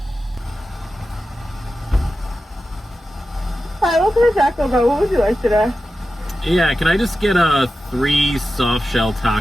Hi, welcome to Taco Bell. What would you like today? Yeah, can I just get 3 soft shell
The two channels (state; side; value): normal; both; correlation 0.92